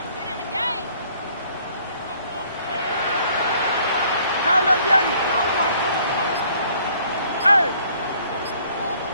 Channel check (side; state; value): both; inverted; correlation -0.60